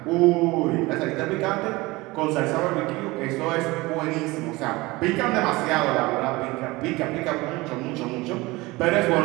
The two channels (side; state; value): left; quieter; 21.7 dB